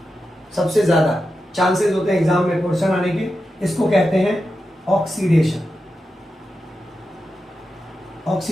सबसे ज्यादा चांसेस होते हैं एग्जाम में क्वेश्चन आने के, इसको कहते हैं ऑक्सीडेशन।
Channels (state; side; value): normal; both; correlation 0.90